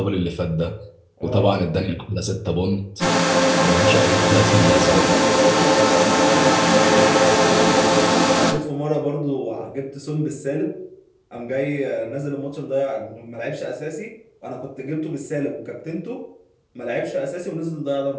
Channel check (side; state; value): both; identical; correlation 1.00